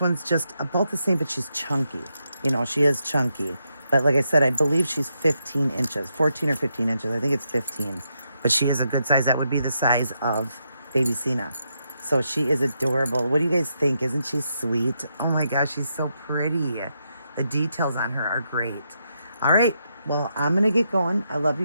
just about the same, but she's chunky. You know, she is chunky. But like I said, I believe she's 15 inches, 14 or 15 inches. I think it's 15. But she is a good size. That would be the size of baby Cena. So she is adorable. What do you guys think? Isn't she sweet? Oh my gosh, she's so pretty. The details on her are great. All right. Well, I'm going to get going. I love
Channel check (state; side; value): inverted; both; correlation -0.81